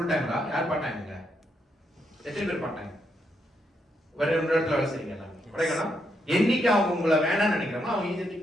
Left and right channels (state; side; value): normal; both; correlation 0.79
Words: டைம்ல யார் பார்ட் டைம்ங்க? எத்தனை பேர் பார்ட் டைம்? வேற ஒரு இடத்துல வேலை செய்றீங்க எல்லாம். கரெக்ட்டா? என்னைக்கு அவங்க உங்களை வேணாம்னு நினைக்கிறாங்களோ, அவங்க ஈஸியா